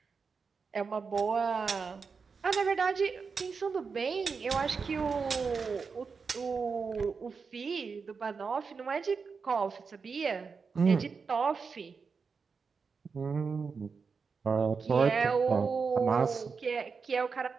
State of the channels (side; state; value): left; quieter; 5.2 dB